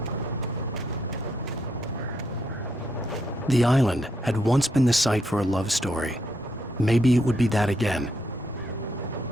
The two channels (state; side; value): normal; both; correlation 0.77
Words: The island had once been the site for a love story. Maybe it would be that again.